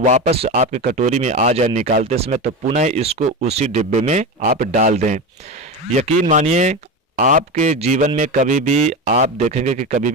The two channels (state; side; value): normal; both; correlation 0.22